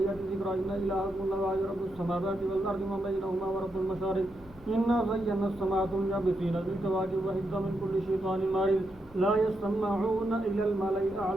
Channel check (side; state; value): both; normal; correlation 0.83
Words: ذكرا إن إلهكم الله رب السماوات والأرض وما بينهما ورب المشارق إنا زينا السماء الدنيا بزينة الكواكب وحفظا من كل شيطان مارد لا يسمعون إلى الملأ